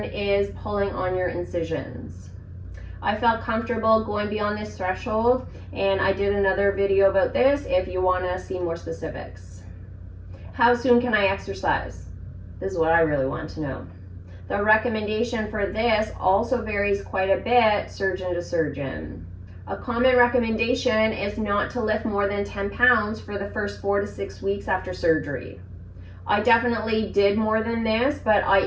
is pulling on your incisions. I felt comfortable going beyond this threshold, and I did another video about this if you want to see more specifics. How soon can I exercise? This is what I really want to know. The recommendation for this also varies quite a bit surgeon to surgeon. A common recommendation is not to lift more than 10 pounds for the first 4 to 6 weeks after surgery. I definitely did more than this, but I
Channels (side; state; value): both; identical; correlation 1.00